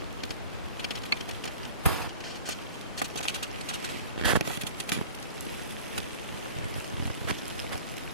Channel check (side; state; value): both; inverted; correlation -0.42